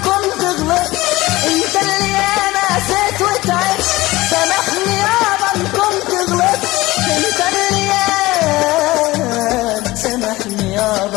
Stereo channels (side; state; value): right; quieter; 19.2 dB